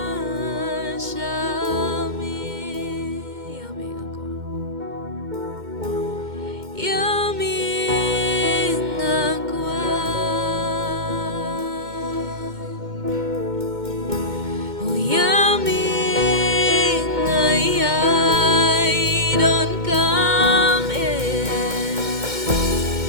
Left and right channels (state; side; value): late; left; 2.1 ms